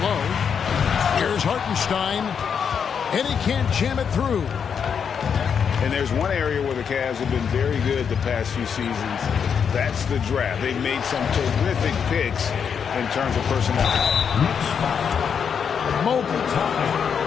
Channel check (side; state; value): right; quieter; 7.1 dB